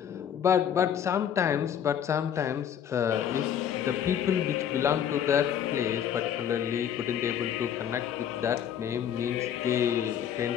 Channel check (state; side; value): quieter; right; 9.1 dB